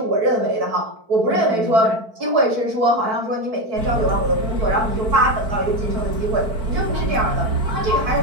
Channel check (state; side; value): late; left; 4.5 ms